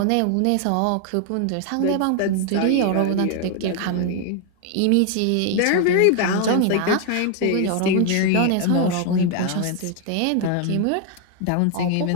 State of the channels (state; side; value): different; both; correlation 0.00